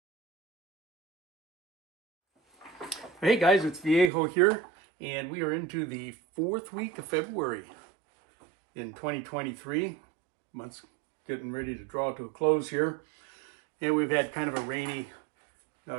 guys, it's Viejo here, and we are into the 4th week of February in 2023. Month's getting ready to draw to a close here, and we've had kind of a rainy,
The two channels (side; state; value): left; drops out; at 4.1 s